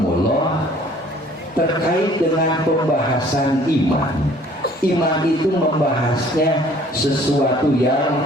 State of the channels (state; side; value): normal; both; correlation 0.55